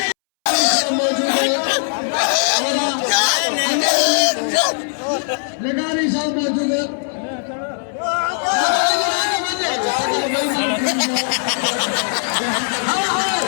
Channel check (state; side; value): silent; right; 65 dB below the other